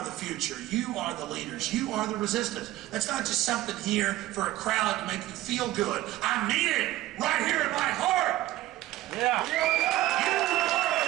the future. You are the leaders. You are the resistance. That's not just something here for a crowd to make you feel good. I mean it right here in my heart. Yeah! You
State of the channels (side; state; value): left; quieter; 15.9 dB